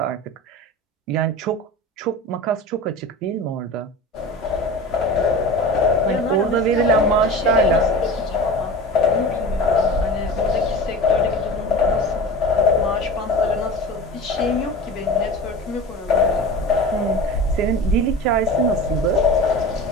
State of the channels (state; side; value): normal; both; correlation 0.34